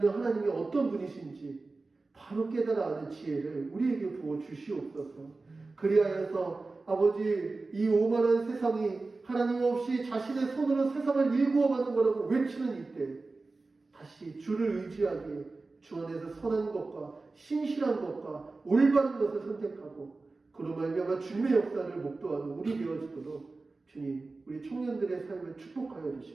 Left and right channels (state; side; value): quieter; left; 3.6 dB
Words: 하나님이 어떤 분이신지 바로 깨달아 아는 지혜를 우리에게 부어 주시옵소서. 그리하여서 아버지 이 오만한 세상이 하나님 없이 자신의 손으로 세상을 일구어가는 거라고 외치는 이때 다시 주를 의지하기에 주 안에서 선한 것과 신실한 것과 올바른 것을 선택하고 그로 말미암아 주님의 역사를 목도하는 우리 되어지도록 주님 우리 청년들의 삶을 축복하여